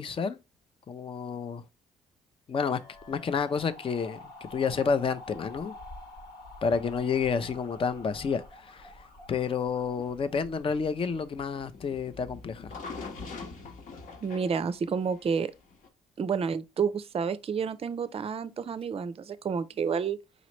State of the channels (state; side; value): normal; both; correlation 0.57